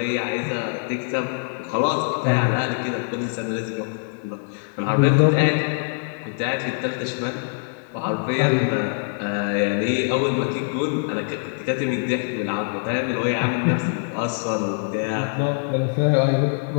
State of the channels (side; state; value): right; silent; 63 dB below the other